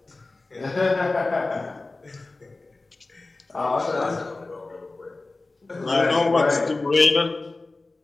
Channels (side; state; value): right; quieter; 3.3 dB